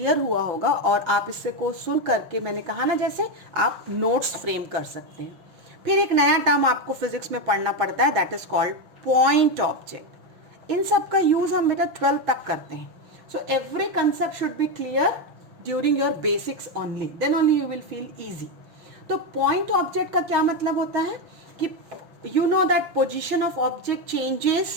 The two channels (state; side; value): late; left; 5.8 ms